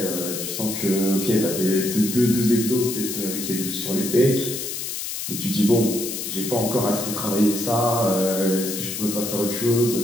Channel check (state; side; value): noise; left; hiss, 5 dB below the sound